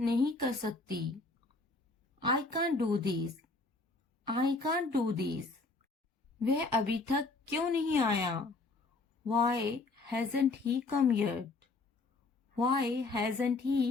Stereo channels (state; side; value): quieter; right; 3.6 dB